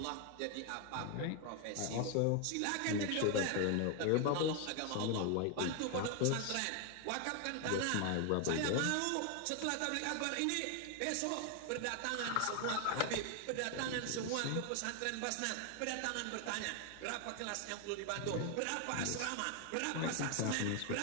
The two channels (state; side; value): different; both; correlation 0.01